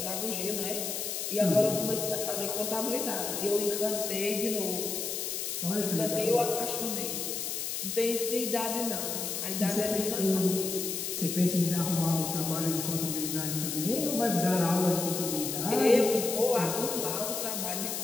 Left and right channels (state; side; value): noise; left; hiss, 3 dB below the sound